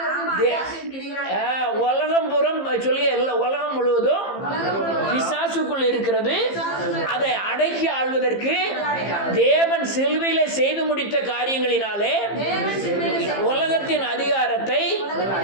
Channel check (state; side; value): late; right; 15 ms